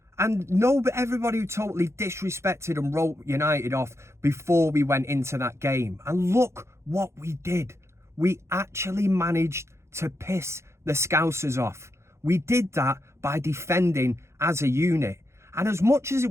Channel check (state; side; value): late; left; 0.13 ms